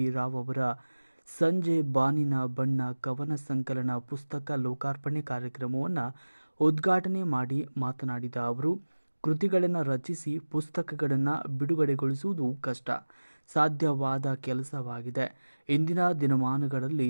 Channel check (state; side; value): inverted; both; correlation -1.00